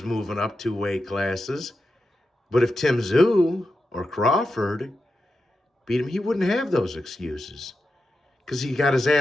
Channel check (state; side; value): normal; both; correlation 0.89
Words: moving up 2 weight classes. But if Tim Tszyu or Crawford beat him, he wouldn't have those excuses because he got his